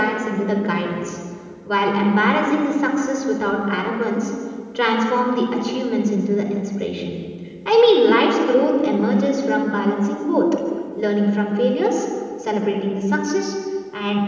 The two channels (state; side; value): identical; both; correlation 1.00